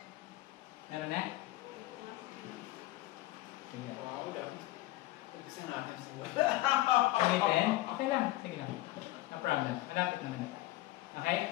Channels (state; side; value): quieter; right; 17.5 dB